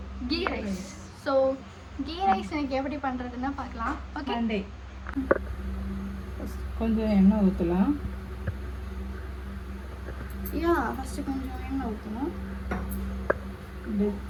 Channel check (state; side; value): identical; both; correlation 1.00